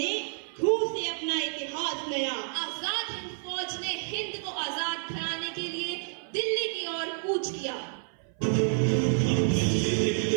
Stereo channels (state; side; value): silent; left; 57 dB below the other